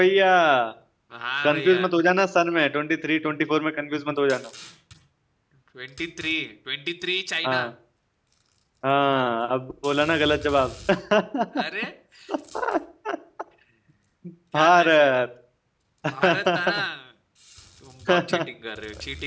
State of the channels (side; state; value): both; identical; correlation 1.00